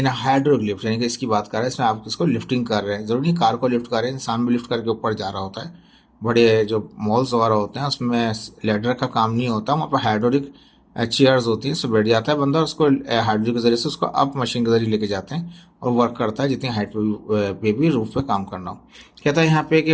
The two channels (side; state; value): both; identical; correlation 1.00